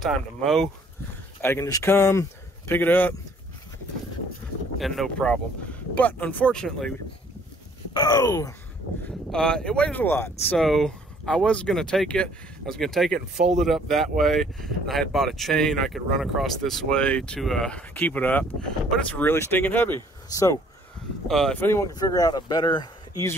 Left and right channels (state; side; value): normal; both; correlation 0.60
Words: to mow, I can just come, pick it up, and no problem. But unfortunately, it weighs a lot. So I was going to take it. And fold it up that way. And I had bought a chain I could run across this way to keep it up. But it's really stinking heavy. So if anyone can figure out a better,